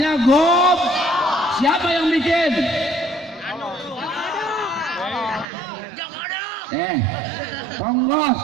gob. Siapa yang bikin? Ponggos.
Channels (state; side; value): drops out; left; at 5.5 s